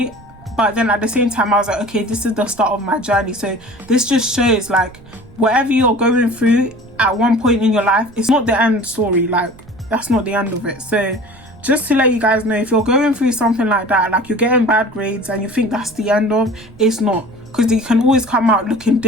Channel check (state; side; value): noise; right; rumble, 23 dB below the sound